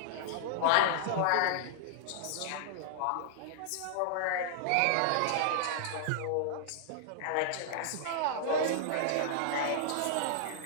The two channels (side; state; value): both; different; correlation -0.01